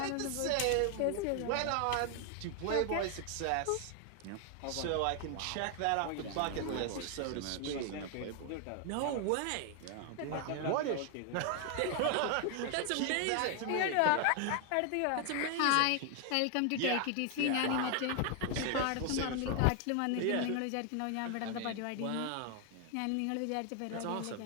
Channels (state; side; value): different; both; correlation 0.00